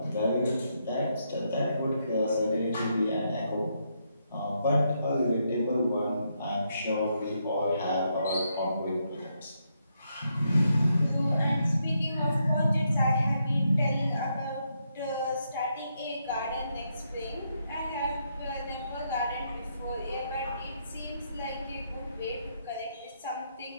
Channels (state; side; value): inverted; both; correlation -0.78